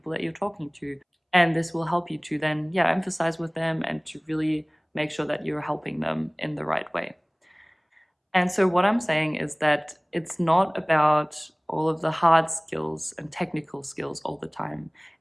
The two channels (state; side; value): identical; both; correlation 1.00